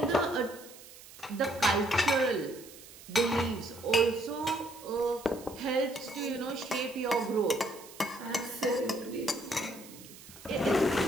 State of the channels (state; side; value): noise; right; hiss, 18 dB below the sound